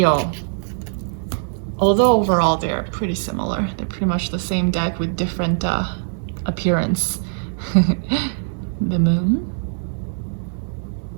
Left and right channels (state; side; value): silent; left; 65 dB below the other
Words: Although overall they're pretty similar. They're pretty much the same deck with different appearance. The Moon.